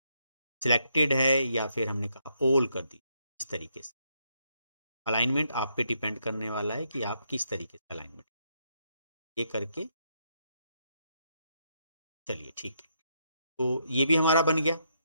सिलेक्टेड है या फिर हमने कहा ऑल कर दी। इस तरीके से अलाइनमेंट आप पे डिपेंड करने वाला है कि आप किस तरीके से अलाइनमेंट ये करके। चलिए ठीक है, तो ये भी हमारा बन गया।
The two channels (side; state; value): both; inverted; correlation -0.76